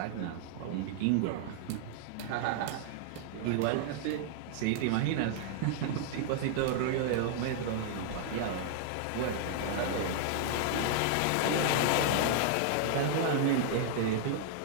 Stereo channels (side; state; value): both; different; correlation -0.01